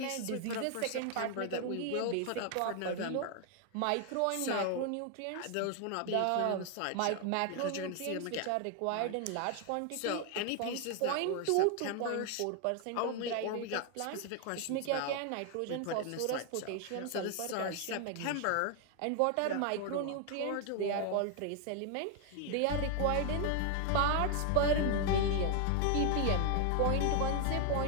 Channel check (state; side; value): different; both; correlation 0.01